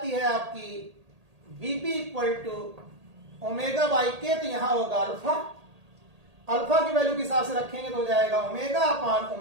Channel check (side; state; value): left; late; 1.8 ms